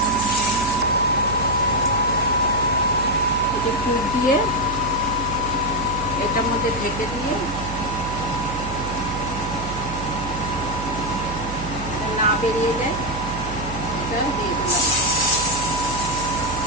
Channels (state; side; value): noise; right; hum, 9 dB below the sound